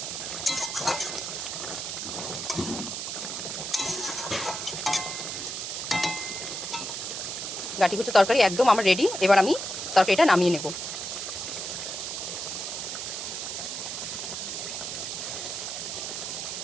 গাঁঠি কচু তরকারি একদম আমার রেডি। এবার আমি তরকারিটা নামিয়ে নেব।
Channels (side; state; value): right; noise; hiss, 4 dB below the sound